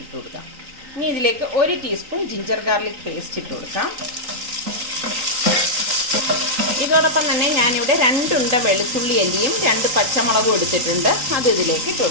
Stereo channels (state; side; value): late; left; 3.8 ms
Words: ഇട്ട് കൊടുക്കാം. ഇനി ഇതിലേക്ക് 1 ടീസ്പൂൺ ജിഞ്ചർ ഗാർലിക് പേസ്റ്റ് ഇട്ട് കൊടുക്കാം. ഇതോടൊപ്പം തന്നെ ഞാനിവിടെ 2 ഉണ്ട വെളുത്തുള്ളി അല്ലിയും 2 പച്ചമുളകും എടുത്തിട്ടുണ്ട്, അത് ഇതിലേക്ക് ഇട്ട്